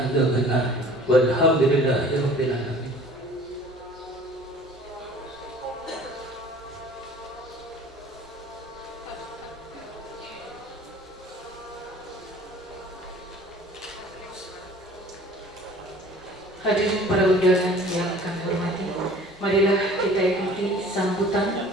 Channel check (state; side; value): normal; both; correlation 0.48